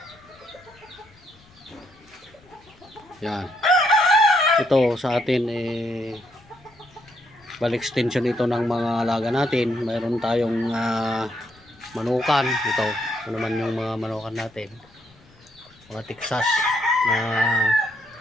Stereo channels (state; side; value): noise; left; rumble, 28 dB below the sound